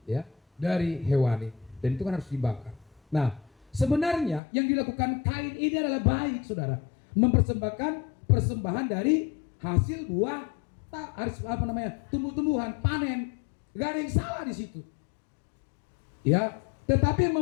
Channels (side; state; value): right; drops out; at 4.4 s